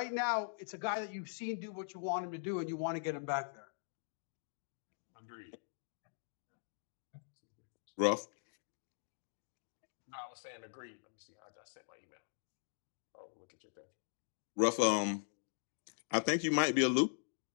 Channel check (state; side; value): silent; right; digital silence